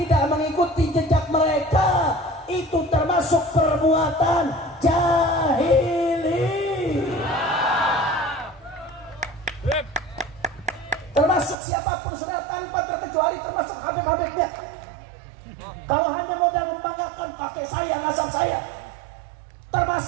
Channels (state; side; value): drops out; left; at 11.6 s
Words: mengikuti jejak mereka, itu termasuk perbuatan jahili. Termasuk siapapun sudah tanpa terkecuali, termasuk habib-habibnya. Kalau hanya modal membanggakan kakek saya, nasab saya, termasuk